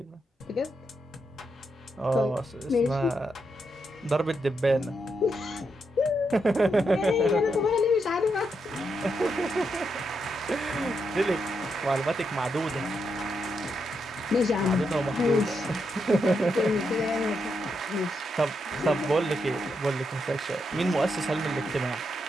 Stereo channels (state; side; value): normal; both; correlation 0.82